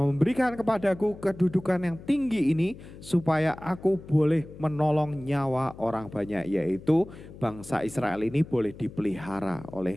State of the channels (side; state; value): left; noise; hum, 17 dB below the sound